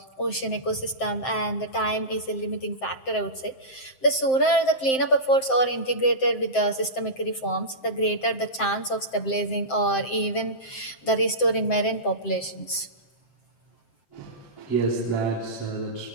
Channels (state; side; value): late; right; 7.6 ms